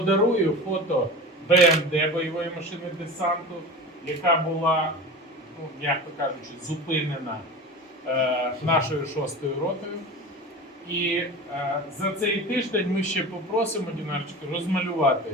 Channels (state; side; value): normal; both; correlation 0.32